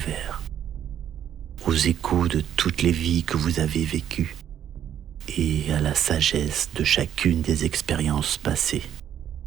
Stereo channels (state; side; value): quieter; left; 9.9 dB